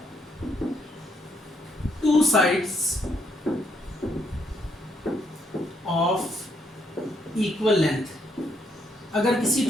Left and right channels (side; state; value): both; normal; correlation 0.73